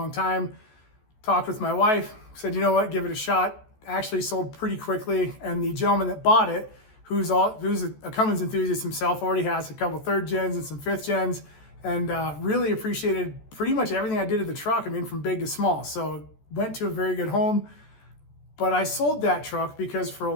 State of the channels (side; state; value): right; late; 14 ms